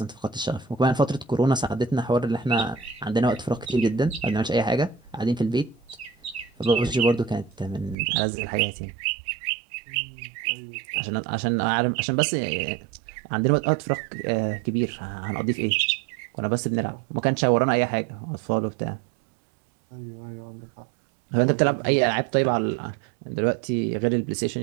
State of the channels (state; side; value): drops out; left; at 8.0 s